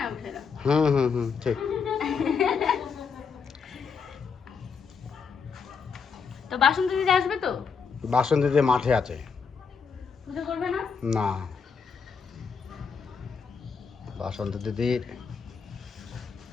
বুঝলে? হুম ঠিক। তো বাসন্তী দিদি আসবে তো? বাসন্তীতে মাঠে আছে। পুজো করবে না? না, বাসন্তী দিদির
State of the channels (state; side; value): quieter; right; 5.8 dB